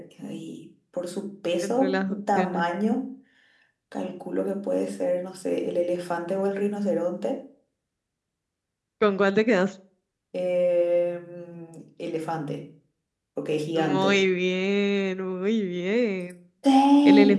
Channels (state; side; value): identical; both; correlation 1.00